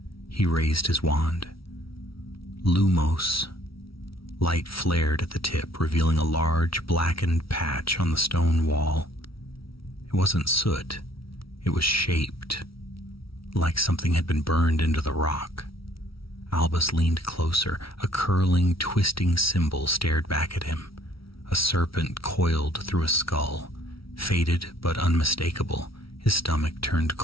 He raised his wand. Lumos. Light flared at the tip, revealing a large, blackened patch on the stone wall. It wasn't soot. It was shaped, like something had been burned into the rock. Albus leaned closer. A curling, twisting symbol stared back at him. A serpent coiled through a skull, faded but unmistakable. His stomach turned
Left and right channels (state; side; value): late; right; 0.75 ms